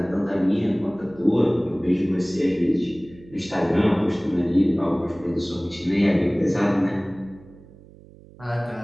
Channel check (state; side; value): noise; right; hum, 22 dB below the sound